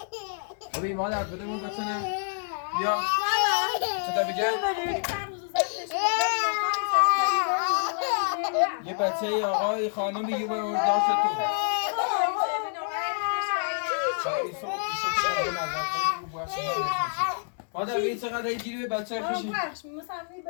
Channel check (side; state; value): right; silent; digital silence